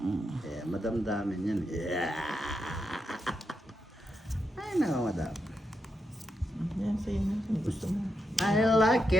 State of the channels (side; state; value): both; normal; correlation 0.84